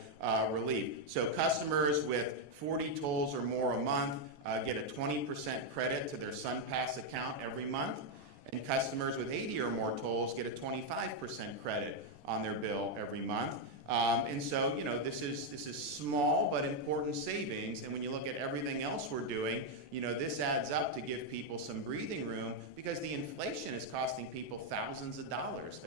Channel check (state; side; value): late; left; 14 ms